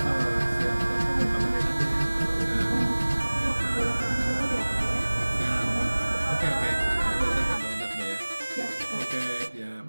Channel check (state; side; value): inverted; both; correlation -1.00